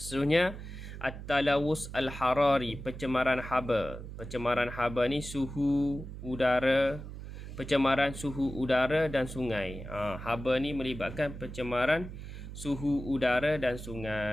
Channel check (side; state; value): right; noise; hum, 10 dB below the sound